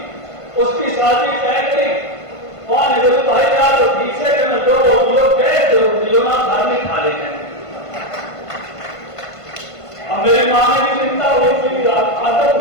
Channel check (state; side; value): late; right; 1.5 ms